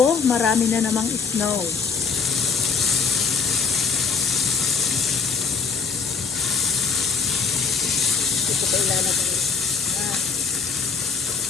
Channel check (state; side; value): quieter; right; 5.5 dB